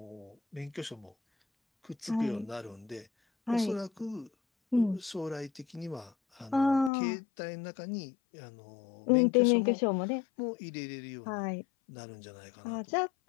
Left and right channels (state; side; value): drops out; right; at 6.9 s